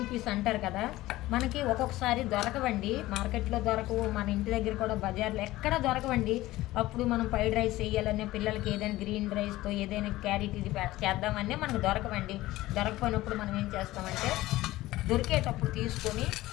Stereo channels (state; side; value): quieter; right; 17.2 dB